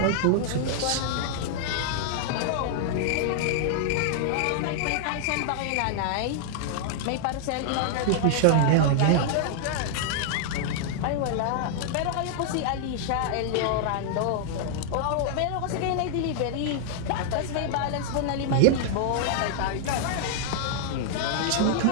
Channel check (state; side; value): different; both; correlation -0.01